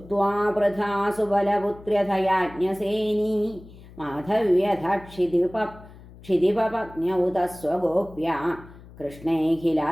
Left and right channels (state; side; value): noise; left; hum, 20 dB below the sound